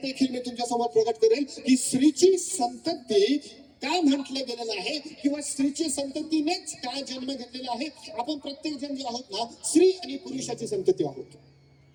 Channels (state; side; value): identical; both; correlation 1.00